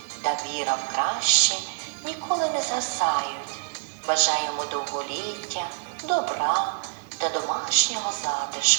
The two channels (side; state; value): left; silent; digital silence